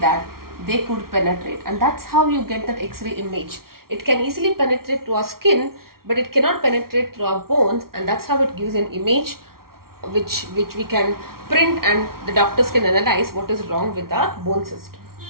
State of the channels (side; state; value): left; late; 0.93 ms